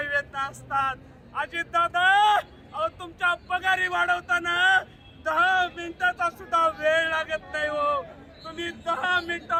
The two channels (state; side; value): identical; both; correlation 1.00